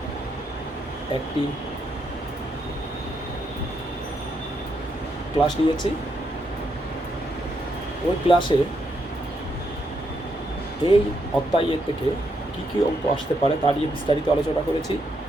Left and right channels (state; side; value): normal; both; correlation 0.79